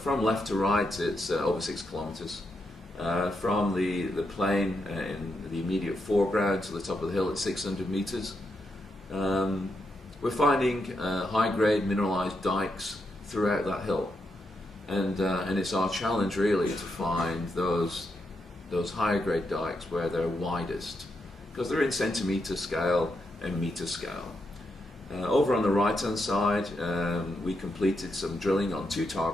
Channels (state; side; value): normal; both; correlation 0.83